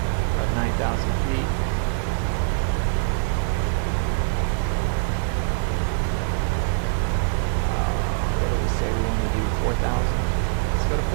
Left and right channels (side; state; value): left; silent; digital silence